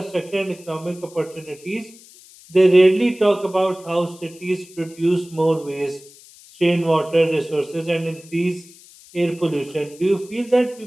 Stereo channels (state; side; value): noise; left; hiss, 23 dB below the sound